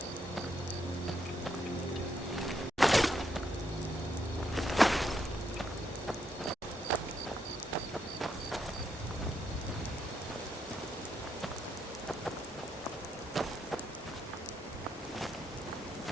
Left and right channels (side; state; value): both; normal; correlation 0.78